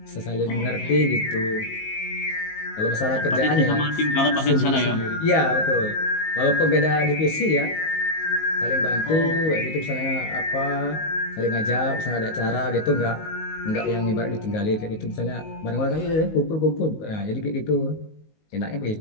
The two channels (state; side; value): late; right; 19 ms